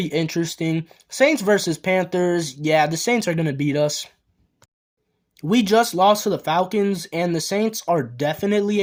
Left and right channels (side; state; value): both; identical; correlation 1.00